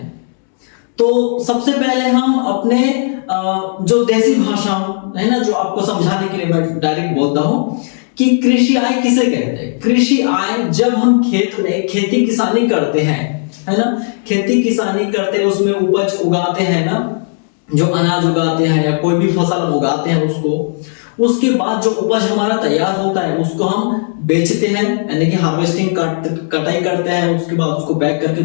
तो सबसे पहले हम अपने जो देसी भाषा है ना, जो आपको समझाने के लिए मैं डायरेक्ट बोलता हूं कि कृषि आय किसे कहते हैं। कृषि आय जब हम खेत में खेती किसानी करते हैं, है ना, खेती किसानी करते हैं, उसमें उपज उगाते हैं ना, जो अनाज उगाते हैं या कोई भी फसल उगाते हैं उसके बाद जो उपज हमारा तैयार होता है उसको हम बेचते हैं, यानी कि हार्वेस्टिंग कटाई करते हैं, उसके बाद उसको पैक करके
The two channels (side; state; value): right; silent; digital silence